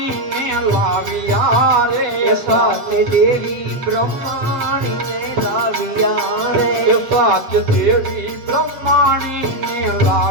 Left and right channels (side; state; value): left; late; 7.9 ms